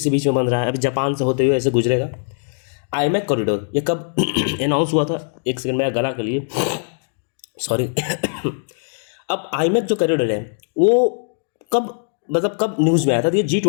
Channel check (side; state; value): right; silent; digital silence